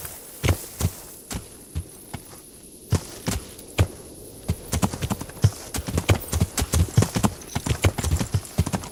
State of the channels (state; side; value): identical; both; correlation 1.00